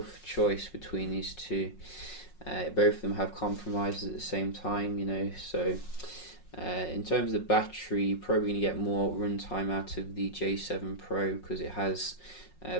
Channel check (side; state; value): right; late; 5.5 ms